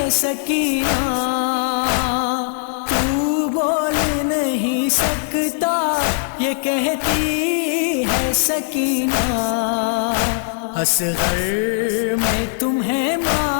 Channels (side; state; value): right; silent; digital silence